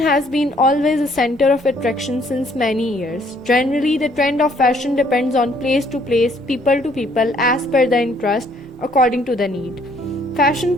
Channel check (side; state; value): both; normal; correlation 0.64